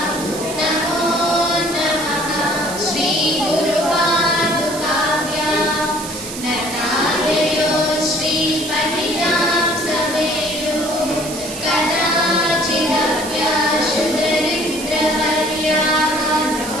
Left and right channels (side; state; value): right; noise; hiss, 10 dB below the sound